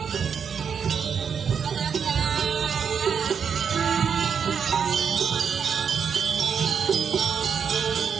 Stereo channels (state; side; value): quieter; left; 6.9 dB